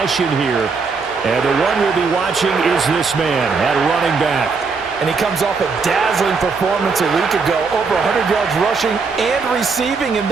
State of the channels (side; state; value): left; quieter; 4.8 dB